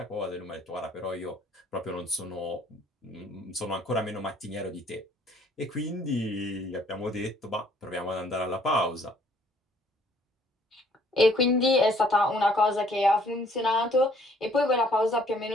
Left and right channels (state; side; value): normal; both; correlation 0.61